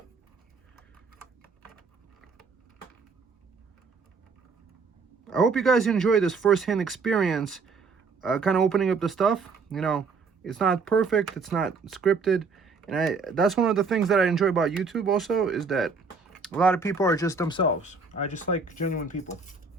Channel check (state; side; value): quieter; left; 4.6 dB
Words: I hope you guys enjoy this first-hand experience, kind of opening up the stuff. You know, it's not perfect, it's not scripted, and that's one of the things that I enjoy about YouTube also, is that a lot of people are just themselves. I just like genuine people.